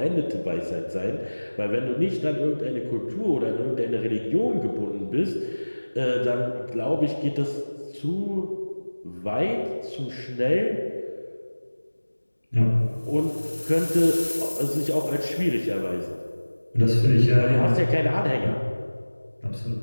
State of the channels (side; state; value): both; inverted; correlation -1.00